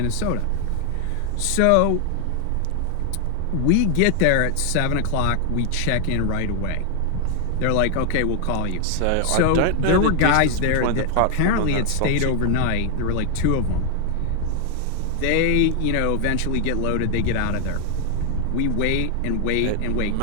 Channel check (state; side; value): different; both; correlation 0.00